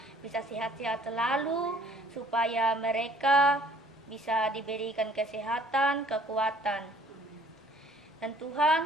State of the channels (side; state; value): both; normal; correlation 0.57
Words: bisa sehat-sehat selalu, supaya mereka bisa diberikan kesehatan, kekuatan. Dan